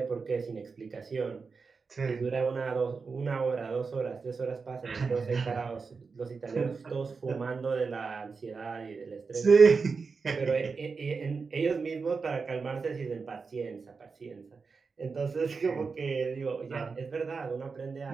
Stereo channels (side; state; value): left; quieter; 4.8 dB